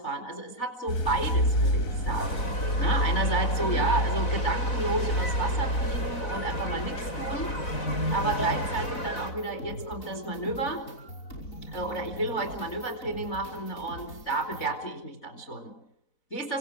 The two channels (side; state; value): right; late; 4.0 ms